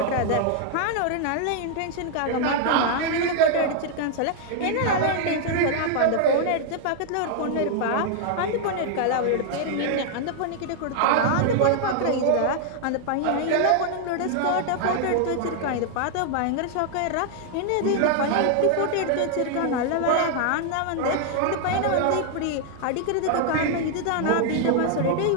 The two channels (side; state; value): both; different; correlation 0.00